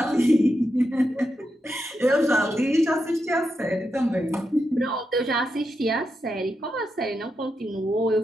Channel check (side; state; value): both; normal; correlation 0.86